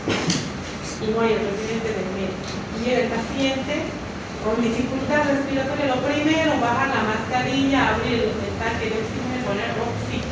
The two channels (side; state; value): both; identical; correlation 1.00